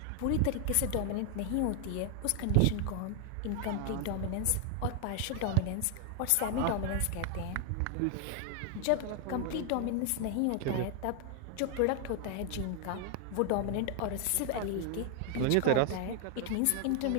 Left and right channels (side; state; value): both; different; correlation 0.00